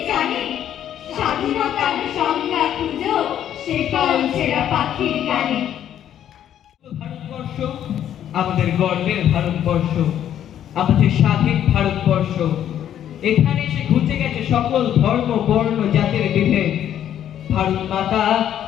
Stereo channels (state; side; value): quieter; right; 10.5 dB